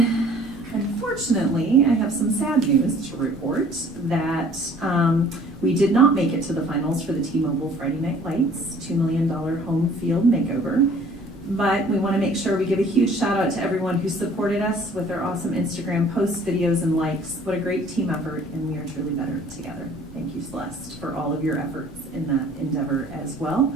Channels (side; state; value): both; normal; correlation 0.53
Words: Unfortunately, I have some sad news to report that we did not make it to the finals for the T-Mobile Friday Night Lights $2 million home field makeover. But we want to make sure we give a huge shout out to everyone who supported us with their awesome Instagram posts, videos, and likes. What a great team effort, and we are truly better together. Thank you, Celeste, for all of your efforts in that endeavor as well.